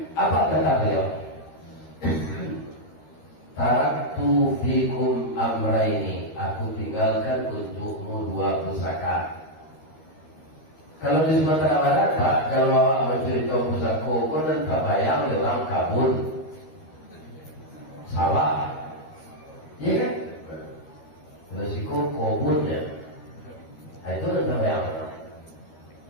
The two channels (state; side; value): late; right; 13 ms